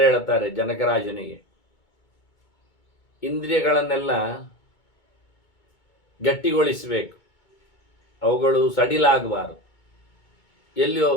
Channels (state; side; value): late; right; 2.2 ms